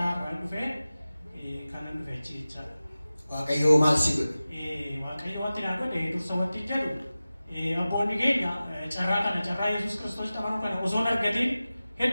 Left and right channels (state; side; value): inverted; both; correlation -0.96